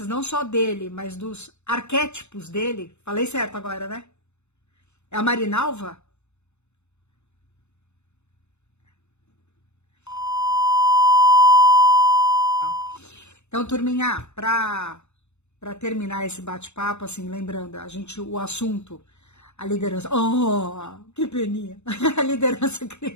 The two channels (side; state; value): right; late; 0.82 ms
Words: não só dele, mas dos arquétipos dele, falei certo agora, né? É a Marinalva? Então, turminha, para terminar esse bate-papo, assim, lembrando, o assunto, a liderança, oh, que peninha, a liderança